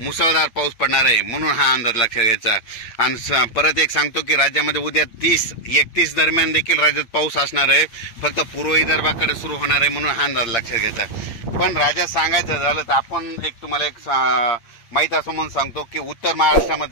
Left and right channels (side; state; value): right; late; 8.6 ms